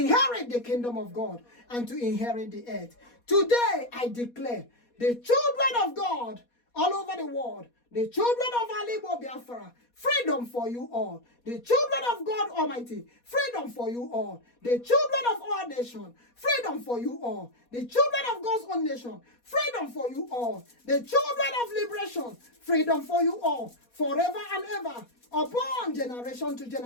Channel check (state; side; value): late; right; 4.2 ms